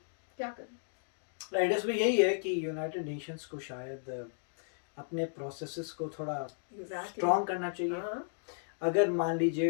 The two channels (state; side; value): silent; right; digital silence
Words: क्या करें। राइट, इसमें यही है कि यूनाइटेड नेशंस को शायद अपने प्रोसेसेस को थोड़ा स्ट्रॉन्ग करना चाहिए। अगर मान